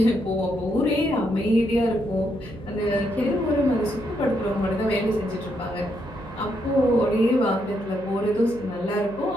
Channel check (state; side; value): noise; right; hum, 16 dB below the sound